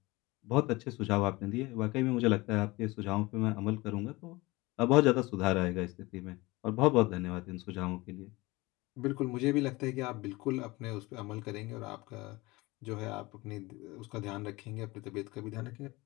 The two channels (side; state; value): right; quieter; 22.0 dB